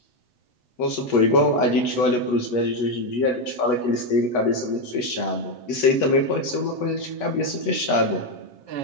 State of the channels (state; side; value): late; right; 8.2 ms